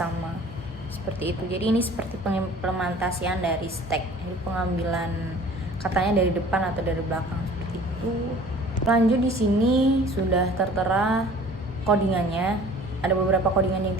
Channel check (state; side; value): normal; both; correlation 0.48